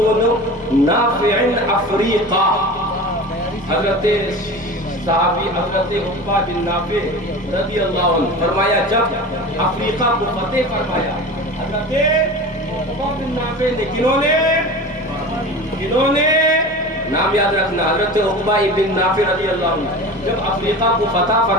نافع افریقہ، حضرت صحابی حضرت عقبہ بن نافع رضی اللہ عنہ، فرمایا جب افریقہ کو فتح فرمایا حضرت عقبہ بن نافع نے، کنہوں نے نام یاد رکھنا، حضرت عقبہ بن نافع رضی اللہ عنہ جب افریقہ کو فتح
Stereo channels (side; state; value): both; normal; correlation 0.33